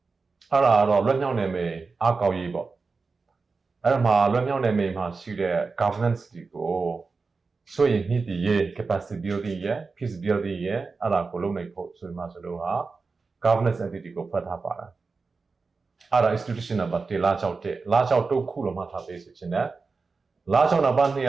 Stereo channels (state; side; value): quieter; left; 4.3 dB